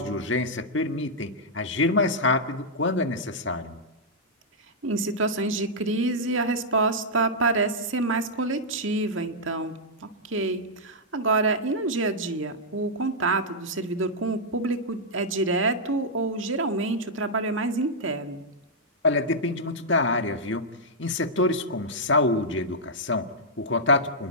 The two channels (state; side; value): normal; both; correlation -0.08